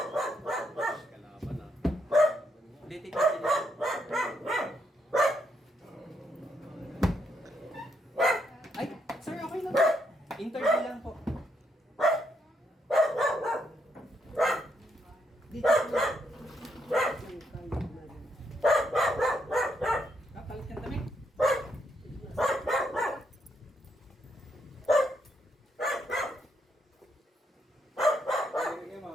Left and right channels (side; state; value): both; normal; correlation 0.77